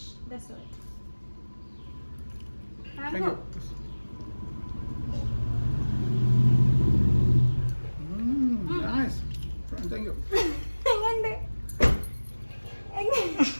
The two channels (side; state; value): both; inverted; correlation -1.00